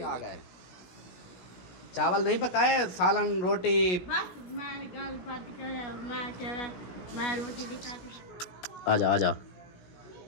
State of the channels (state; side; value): late; right; 16 ms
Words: आ गए। चावल नहीं पकाए, सालन रोटी। बस मैं गल बात कर, मैं कह रहा मैं रोटी दिखाती। आजा आजा